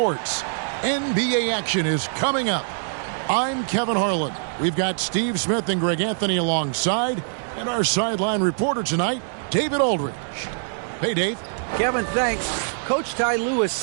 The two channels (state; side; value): silent; left; digital silence